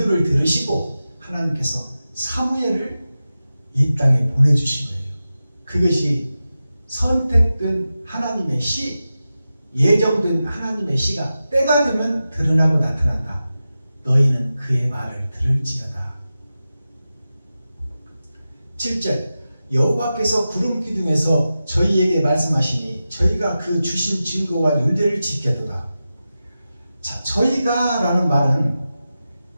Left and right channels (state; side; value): inverted; both; correlation -0.93